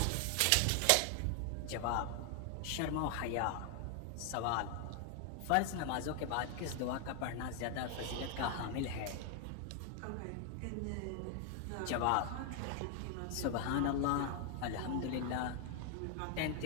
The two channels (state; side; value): different; both; correlation 0.00